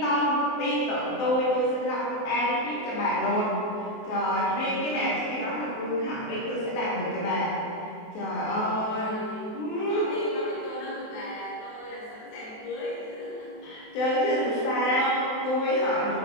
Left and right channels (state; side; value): late; right; 23 ms